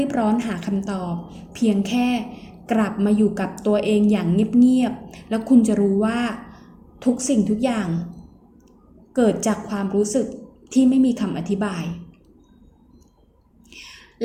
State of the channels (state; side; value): identical; both; correlation 1.00